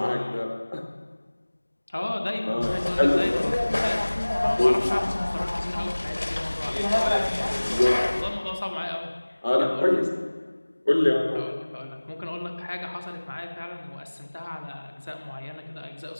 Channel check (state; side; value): inverted; both; correlation -1.00